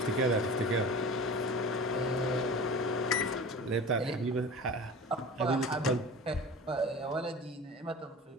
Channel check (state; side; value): normal; both; correlation 0.37